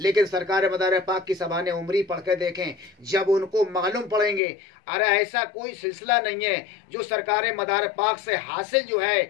सरकार मदार पाक की ज़बान उमरी पढ़ के देखें, जब उनको मालूम पड़ेंगे अरे ऐसा कोई सिलसिला नहीं है जो सरकार मदार पाक से हासिल जो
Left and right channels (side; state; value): right; drops out; at 4.4 s